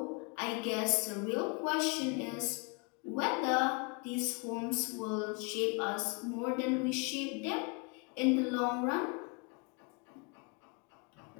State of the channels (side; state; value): right; quieter; 32.2 dB